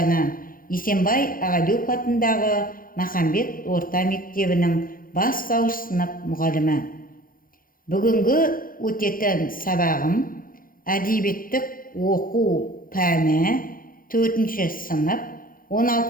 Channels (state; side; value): late; right; 0.41 ms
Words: Есенбай Ағалиев атындағы Махамбет орта мектебінің бастауыш сынып мұғалімі. Бүгінгі өтетін сабағым әдебиеттік оқу пәні 4-ші сынып